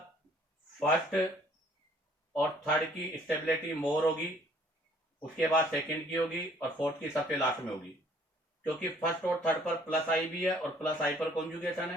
फर्स्ट और थर्ड की स्टेबिलिटी मोर होगी, उसके बाद सेकंड की होगी और फोर्थ की सबसे लास्ट में होगी, क्योंकि फर्स्ट और थर्ड पर प्लस आई भी है और प्लस आई पर कॉन्जुगेशन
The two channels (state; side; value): normal; both; correlation 0.59